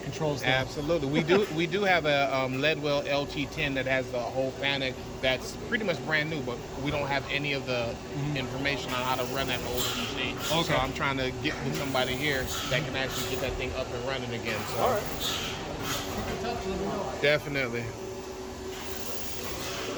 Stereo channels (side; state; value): both; identical; correlation 1.00